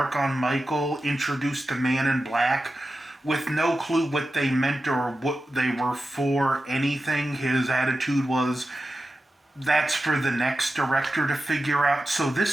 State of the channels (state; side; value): normal; both; correlation 0.92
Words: on Michael, introduced the Man in Black, with no clue what they meant or what they were for anything. His attitude was, that's for the next director to figure out. So